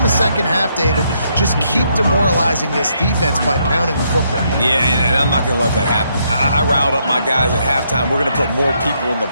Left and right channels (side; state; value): both; inverted; correlation -0.74